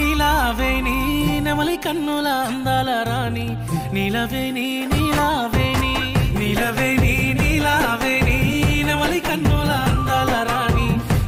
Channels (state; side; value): identical; both; correlation 1.00